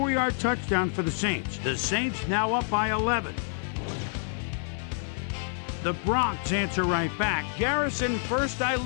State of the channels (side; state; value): right; silent; 59 dB below the other